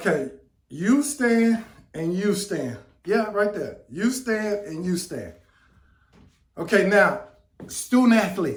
You stand and you stand. Yeah, right there. You stand and you stand. Okay, now, student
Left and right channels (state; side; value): identical; both; correlation 1.00